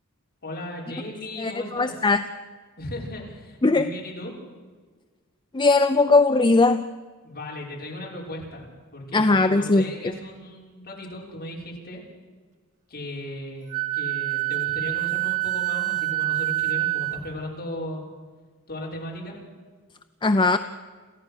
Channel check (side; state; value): both; normal; correlation 0.37